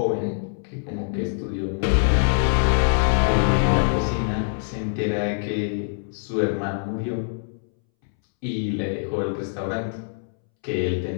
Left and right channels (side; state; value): right; silent; 63 dB below the other